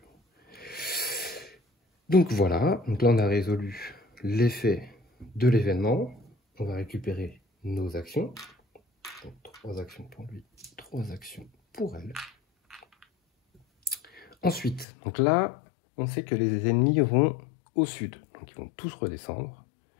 Donc voilà, donc là on a résolu l'effet de l'événement. On va récupérer nos actions. Donc 3 actions pour lui, 3 actions pour elle. Ensuite, donc là, on sait que les ennemis vont au sud. Donc ils vont tous redescendre.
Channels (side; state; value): right; drops out; at 14.9 s